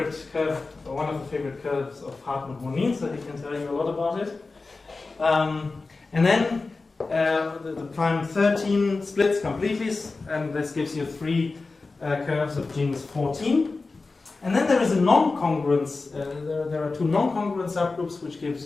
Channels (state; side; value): quieter; right; 3.8 dB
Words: curve, or one of the favorite curves of Hartmut Monin, so he can tell you a lot about it. And then the prime 13 splits completely, and this gives you 3 curves of genus 14. And then there is a non-congruence. There are 2 non-congruent subgroups, which give